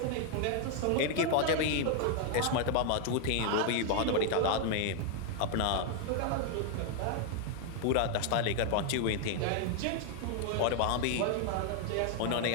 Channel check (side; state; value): both; different; correlation 0.00